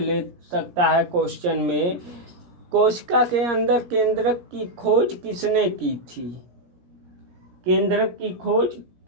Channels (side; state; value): left; late; 17 ms